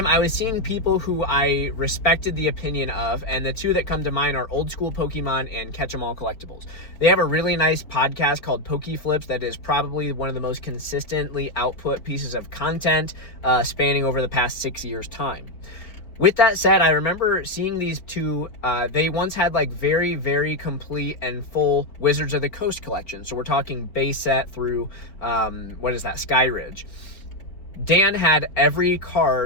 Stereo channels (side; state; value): right; late; 4.2 ms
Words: I was seeing people who I respected the opinion of, and the two that come to mind are Old School Pokemon and Catch 'em All Collectibles. They have a really nice podcast called Pokeflips that is probably one of the most consistently output pieces of content spanning over the past 6 years' time. With that said, I remember seeing these two, they once had like very, very complete and full Wizards of the Coast collection. So we're talking base set through, Sky Ridge. Dan had every